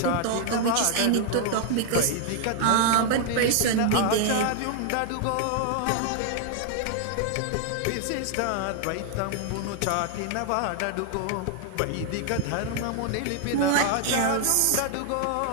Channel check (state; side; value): different; both; correlation 0.00